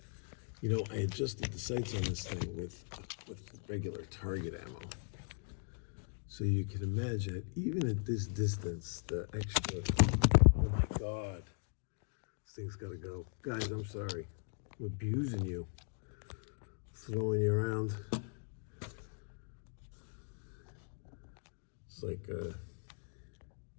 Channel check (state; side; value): silent; right; 52 dB below the other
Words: You know, I adjusted the sights on this thing with regular target ammo. So you can imagine, even at this distance, the extra, oh my God, this thing's gotta go. Guys, I'm sorry. I'm abusing you, throwing you around. It's like, I